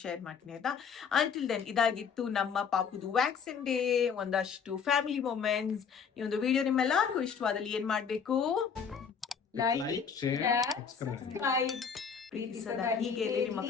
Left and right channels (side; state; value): right; quieter; 6.4 dB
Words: ಶೇರ್ ಮಾಡ್ತೀನಿ ಆಯ್ತಾ. ಅಂಟಿಲ್ ದೆನ್ ಇದಾಗಿತ್ತು ನಮ್ಮ ಪಾಪುದು ವ್ಯಾಕ್ಸಿನ್ ಡೇ, ಒಂದಷ್ಟು ಫ್ಯಾಮಿಲಿ ಮೊಮೆಂಟ್ಸ್. ಈ ಒಂದು ವಿಡಿಯೋ ನಿಮ್ಮೆಲ್ಲರಿಗೂ ಇಷ್ಟವಾದಲ್ಲಿ ಏನ್ ಮಾಡ್ಬೇಕು, ಲೈಕ್ ಶೇರ್ ಸಬ್ಸ್ಕ್ರೈಬ್ ಪ್ರೀತಿ ಸದಾ ಹೀಗೆ ನಿಮ್ಮ